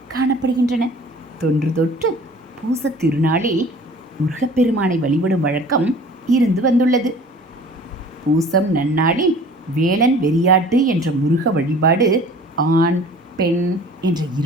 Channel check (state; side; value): normal; both; correlation 0.47